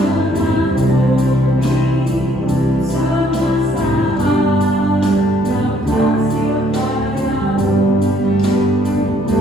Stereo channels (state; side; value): normal; both; correlation 0.66